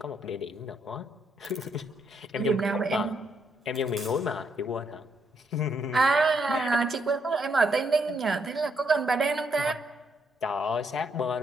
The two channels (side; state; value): both; normal; correlation 0.75